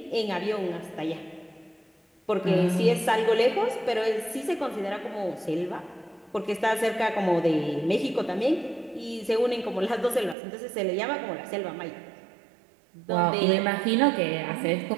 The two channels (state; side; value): drops out; left; at 10.4 s